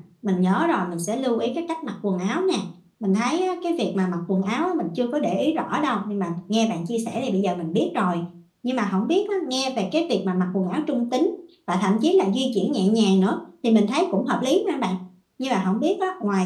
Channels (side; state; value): both; identical; correlation 1.00